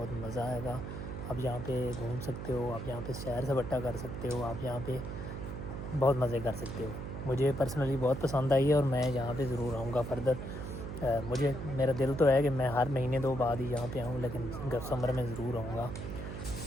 मज़ा आएगा। आप यहाँ पे घूम सकते हो, आप यहाँ पे सैर सपाटा कर सकते हो, आप यहाँ पे बहुत मज़े कर सकते हो। मुझे पर्सनली बहुत पसंद आई है और मैं यहाँ पे ज़रूर आऊँगा फर्दर। मुझे मेरा दिल तो है कि मैं हर महीने 2 बाद ही यहाँ पे आऊँ, लेकिन समर में ज़रूर आऊँगा।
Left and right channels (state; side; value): noise; right; hum, 7 dB below the sound